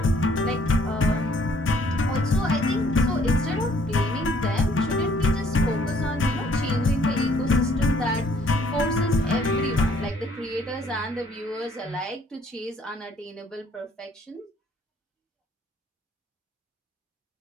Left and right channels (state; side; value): normal; both; correlation 0.62